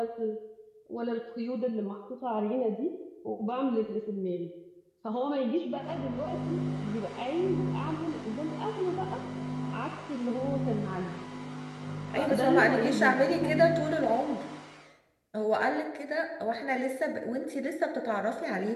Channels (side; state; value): both; identical; correlation 1.00